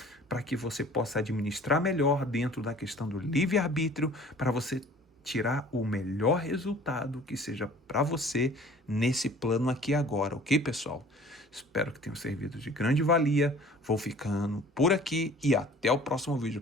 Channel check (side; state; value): both; normal; correlation 0.49